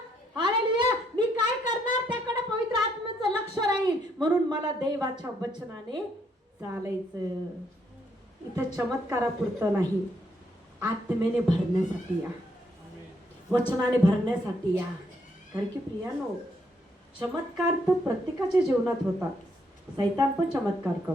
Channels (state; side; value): normal; both; correlation 0.73